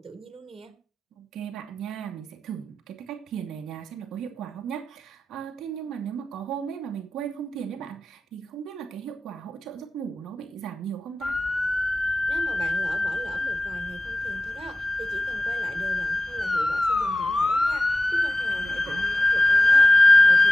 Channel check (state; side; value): normal; both; correlation 0.94